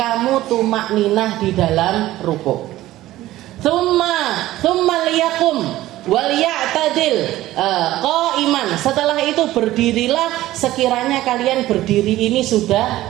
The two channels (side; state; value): left; quieter; 15.6 dB